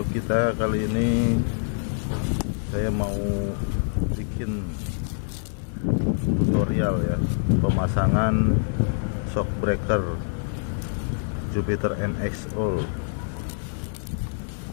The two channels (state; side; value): silent; right; digital silence